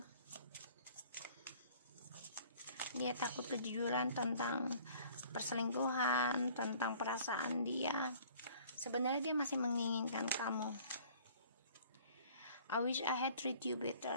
Dia takut kejujuran tentang perselingkuhan, tentang perasaan dia. Sebenarnya dia masih menginginkan kamu. I wish I had treat you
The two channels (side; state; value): both; inverted; correlation -0.53